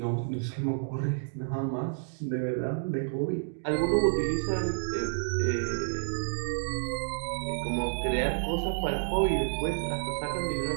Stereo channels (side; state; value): left; silent; digital silence